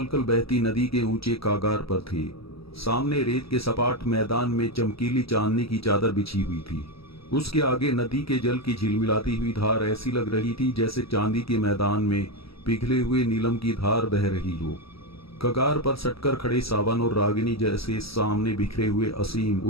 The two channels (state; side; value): late; right; 0.76 ms